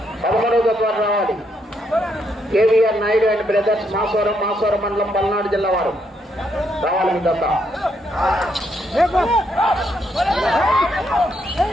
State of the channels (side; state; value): both; normal; correlation 0.76